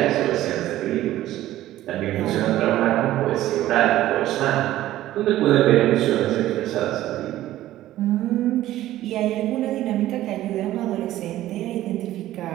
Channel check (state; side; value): quieter; left; 14.4 dB